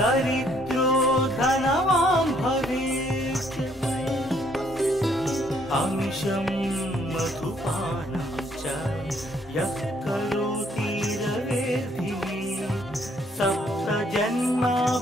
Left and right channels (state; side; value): normal; both; correlation 0.67